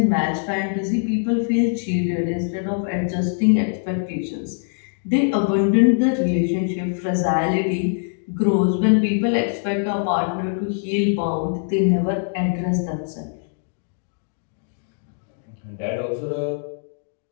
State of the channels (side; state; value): right; silent; digital silence